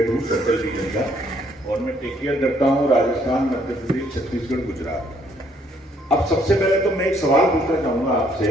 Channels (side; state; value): both; normal; correlation 0.67